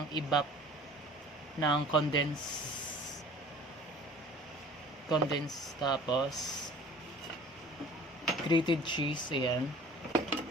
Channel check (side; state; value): both; normal; correlation 0.47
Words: ibap ng condensed, tapos grated cheese. Ayan.